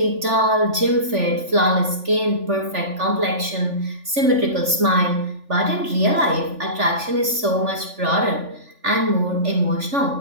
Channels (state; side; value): late; left; 3.5 ms